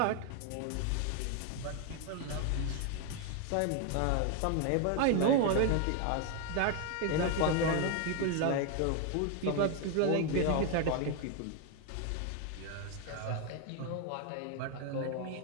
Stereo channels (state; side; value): different; both; correlation 0.01